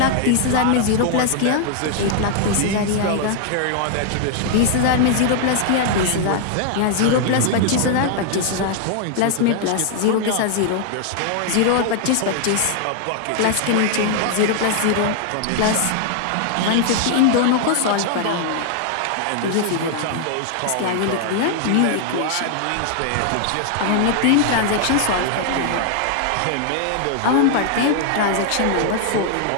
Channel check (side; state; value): both; different; correlation 0.00